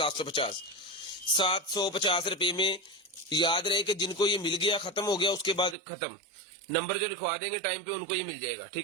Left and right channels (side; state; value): left; drops out; at 5.8 s